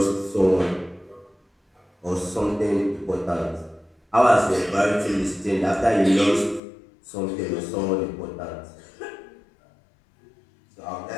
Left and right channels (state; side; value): drops out; right; at 6.6 s